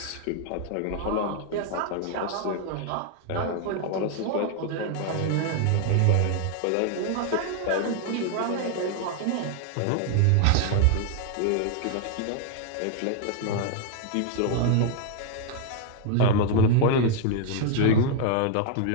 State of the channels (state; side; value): different; both; correlation 0.00